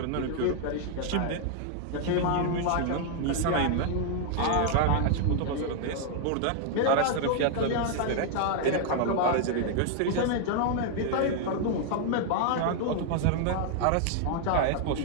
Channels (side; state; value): both; different; correlation 0.00